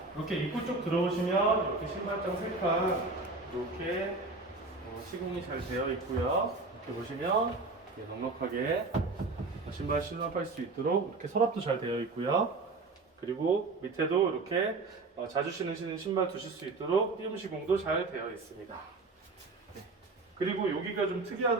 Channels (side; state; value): left; quieter; 3.6 dB